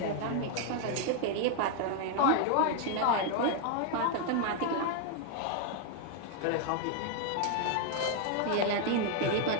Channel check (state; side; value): different; both; correlation 0.00